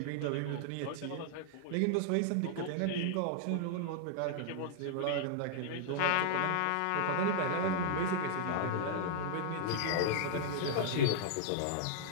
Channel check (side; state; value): both; different; correlation -0.01